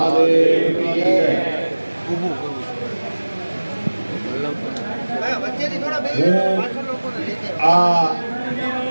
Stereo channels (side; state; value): both; inverted; correlation -1.00